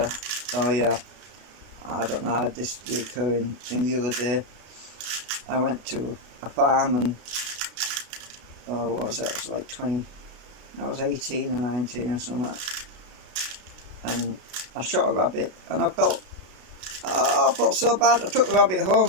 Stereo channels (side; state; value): left; late; 33 ms